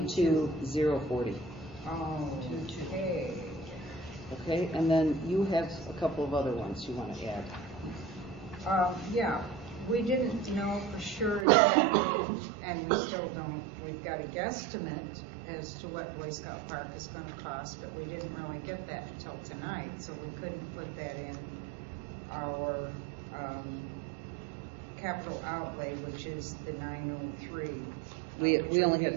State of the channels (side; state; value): left; drops out; at 11.5 s